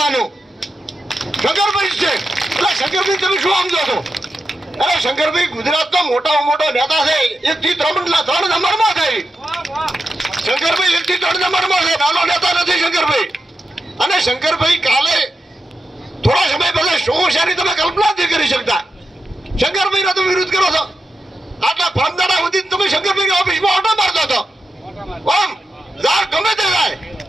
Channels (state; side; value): normal; both; correlation 0.89